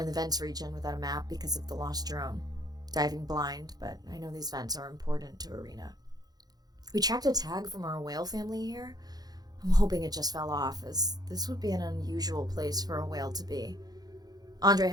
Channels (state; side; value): late; left; 0.19 ms